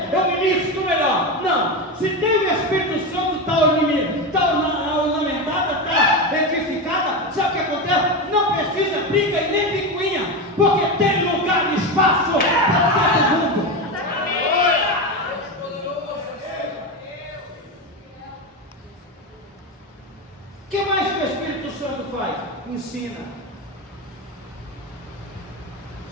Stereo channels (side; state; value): both; normal; correlation 0.17